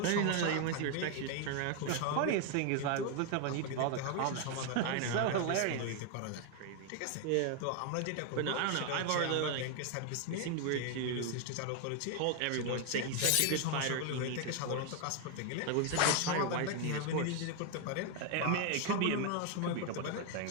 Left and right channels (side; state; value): both; different; correlation 0.01